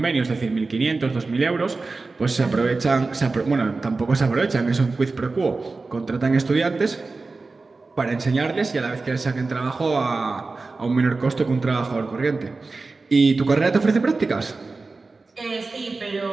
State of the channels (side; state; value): left; quieter; 3.8 dB